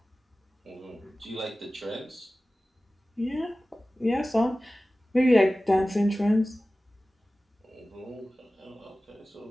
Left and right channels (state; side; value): normal; both; correlation 0.97